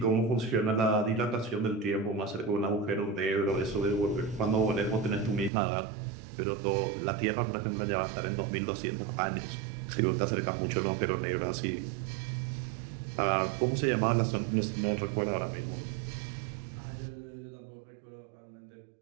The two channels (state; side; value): drops out; left; at 5.5 s